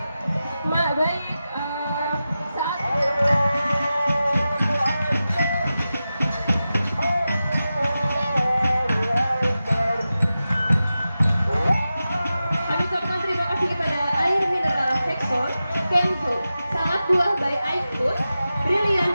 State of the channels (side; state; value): both; inverted; correlation -0.93